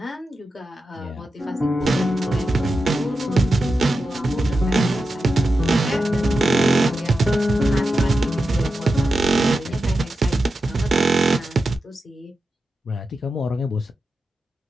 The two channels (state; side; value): normal; both; correlation 0.90